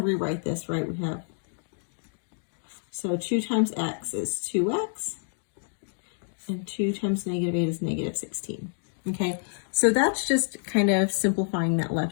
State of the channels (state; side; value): silent; right; digital silence